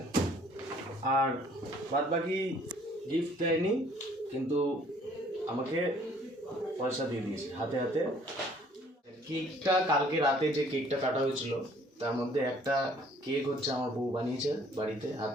আর বাদ বাকি গিফট দেয়নি, কিন্তু আমাকে পয়সা দিয়ে দিয়েছে হাতে হাতে। কেকটা কালকে রাতে যে কেকটা কাটা হয়েছিল তার মধ্যে একটা কেক হচ্ছে আমার বউ বানিয়েছে বাড়িতে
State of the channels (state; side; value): normal; both; correlation 0.58